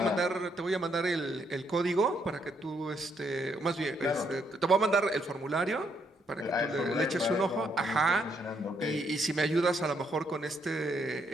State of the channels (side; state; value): both; normal; correlation 0.74